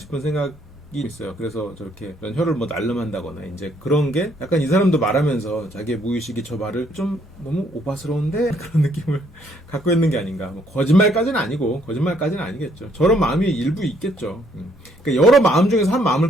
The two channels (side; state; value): both; normal; correlation 0.68